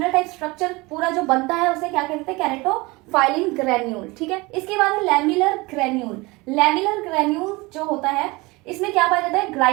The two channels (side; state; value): left; quieter; 23.8 dB